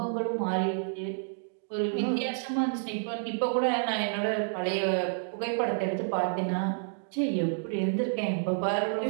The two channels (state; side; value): silent; left; digital silence